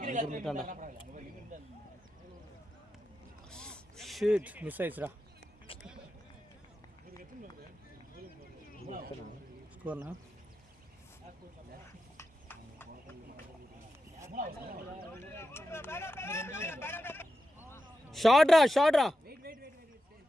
ஷிட் மிஸ் ஆயிடுச்சுடா ஸ்கோர்னா ஷார்ட்ரா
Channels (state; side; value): normal; both; correlation 0.90